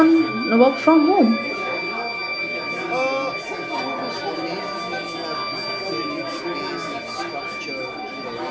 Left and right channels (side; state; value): both; identical; correlation 1.00